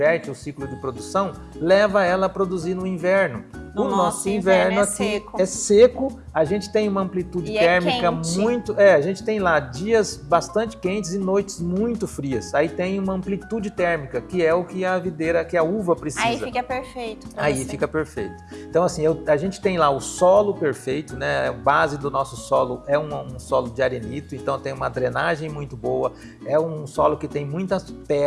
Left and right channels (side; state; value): both; identical; correlation 1.00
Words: o ciclo de produção, leva ela a produzir no inverno. O nosso inverno aqui é seco, a gente tem uma amplitude térmica muito... a gente tem lá dias bastante quentes e noites muito frias. Aí tem uma amplitude térmica, que é o que a videira, que a uva precisa. Aí fica perfeito. Aí fica perfeito. Então, assim, a gente tem lá o solo perfeito, né? A base do nosso solo é um solo de arenito, então tem uma drenagem muito boa. É um solo que tem muitas